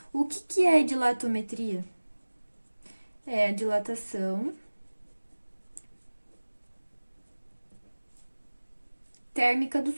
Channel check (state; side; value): inverted; both; correlation -1.00